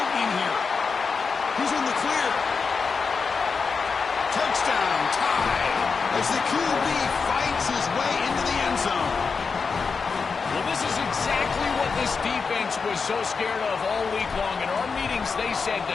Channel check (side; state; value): right; quieter; 5.1 dB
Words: here. He's in the clear. Touchdown, tied, as the QB fights his way into the end zone. Well, this is exactly what this defense was so scared of all week long. In our meetings, they said